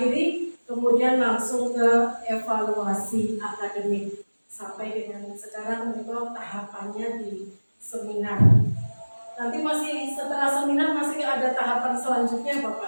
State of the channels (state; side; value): inverted; both; correlation -1.00